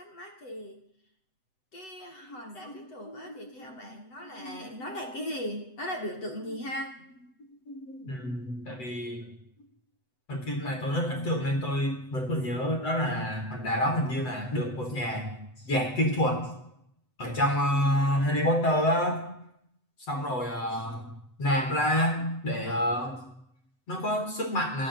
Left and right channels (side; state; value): right; late; 7.9 ms